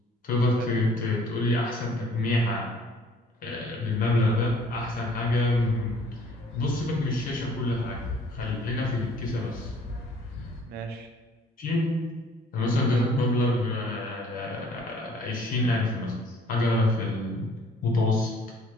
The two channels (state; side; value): normal; both; correlation 0.57